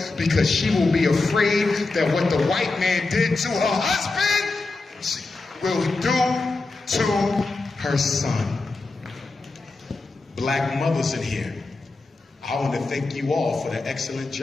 because she will be afraid that what the white man did to her husband, she will do to her son. Black mothers in here, I want to thank you all for the excellent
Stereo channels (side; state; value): right; quieter; 3.5 dB